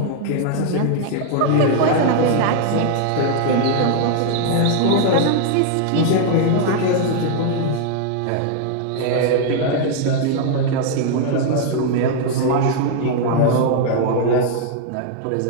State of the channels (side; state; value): both; different; correlation -0.01